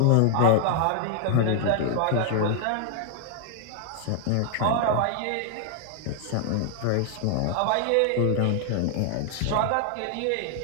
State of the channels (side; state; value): both; different; correlation 0.00